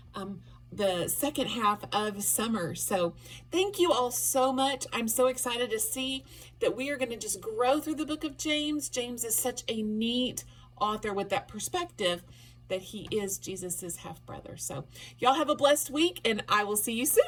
the second half of summer. So thank you all so much. I'm so excited to see that we are going to just grow through the book of James. James is such a neat author with that perspective that he is Jesus's half brother. So y'all have a blessed week, and I will see you soon.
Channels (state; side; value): identical; both; correlation 1.00